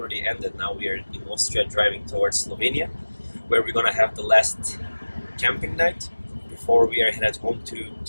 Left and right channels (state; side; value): inverted; both; correlation -1.00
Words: ended. Now we are in Austria driving towards Slovenia, where we're gonna have the last camping night before we are headed home